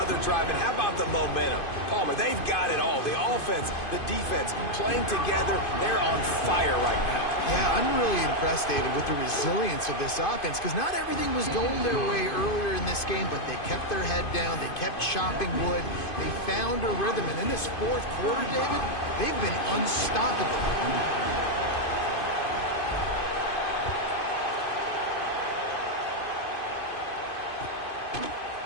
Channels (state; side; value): late; right; 2.5 ms